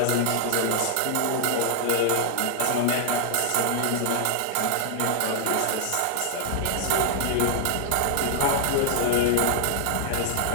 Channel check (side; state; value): both; different; correlation 0.00